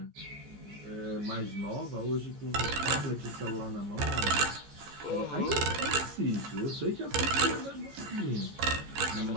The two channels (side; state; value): left; late; 14 ms